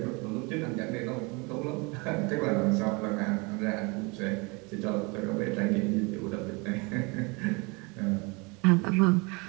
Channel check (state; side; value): quieter; left; 28.7 dB